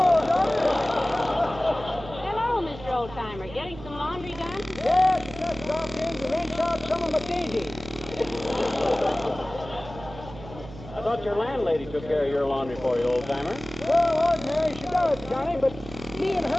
Johnny! Hello, Mr. Oldtimer. Getting some laundry done? Yes, I just dropped in to wrench out some of my dainties. I thought your landlady took care of your laundry for you, old-timer. Well, ordinary she does, Johnny, but me and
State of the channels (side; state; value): right; noise; hum, 14 dB below the sound